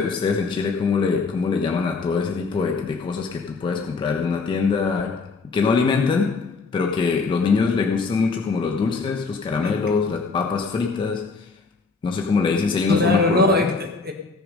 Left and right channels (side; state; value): right; quieter; 4.3 dB